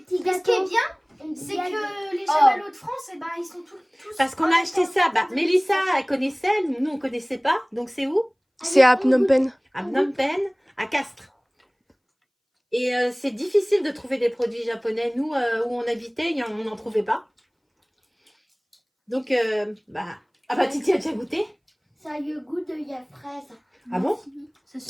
Ce gâteaux. qui est bien, c'est que les chamallows de France, eh ben, ils sont tous... Parce qu'on a acheté ça. Bah, Mélissa, elle connaissait, nous on connaissait pas. Donc c'est où? C'est à Phnom Penh. À Phnom Penh, à Castres. Et c'est difficile de trouver des produits japonais. Nous, où on habitait, on n'en trouvait pas. Donc, bah... Ah bah, Titi a déjà goûté? Ça a le goût de la fraise. Ah bon?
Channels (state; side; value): identical; both; correlation 1.00